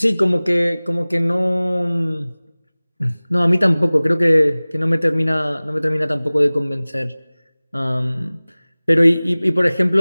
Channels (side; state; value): both; inverted; correlation -0.99